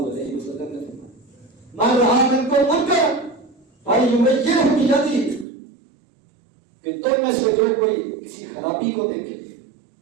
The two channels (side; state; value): left; drops out; at 5.5 s